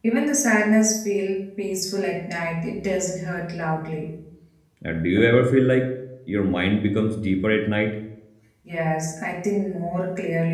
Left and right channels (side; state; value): both; identical; correlation 1.00